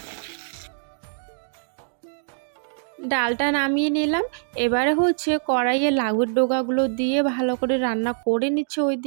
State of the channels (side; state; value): left; silent; digital silence